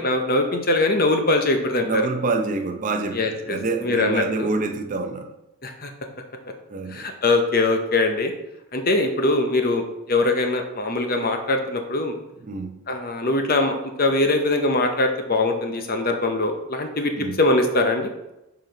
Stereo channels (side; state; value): both; normal; correlation 0.08